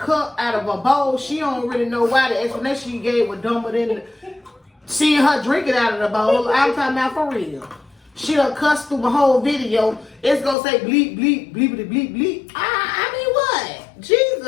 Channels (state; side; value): drops out; right; at 10.6 s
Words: of a bowl. She don't really know why. The explanation she gave was dumber than seeing her drink it out of the bowl. I'm talking about for real. She done cussed through my whole video. It's gonna say bleep, bleep, bleepity, bleep, bleep. I mean what?